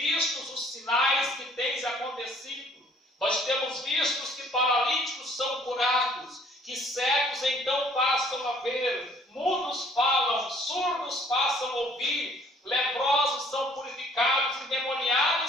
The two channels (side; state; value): both; normal; correlation 0.59